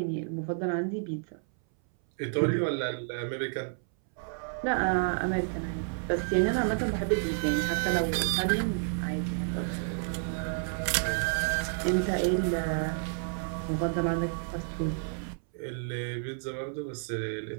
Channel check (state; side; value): silent; left; 58 dB below the other